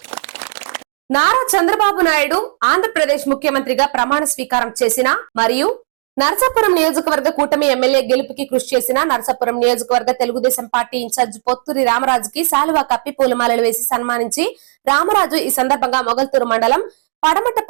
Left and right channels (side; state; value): left; silent; digital silence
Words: నారా చంద్రబాబు నాయుడు ఆంధ్రప్రదేశ్ ముఖ్యమంత్రిగా ప్రమాణ స్వీకారం చేసిన మరియు నరసాపురం నియోజకవర్గ కూటమి ఎమ్మెల్యే గెలుపుకి కృషి చేసిన నరసాపురం నియోజకవర్గ తెలుగుదేశం పార్టీ ఇన్ఛార్జ్ పొత్తూరి రామరాజుకి శాలువా కప్పి పూలమాలలు వేసి సన్మానించి రామరాజు ఈ సందర్భంగా మొగల్తూరు మండలం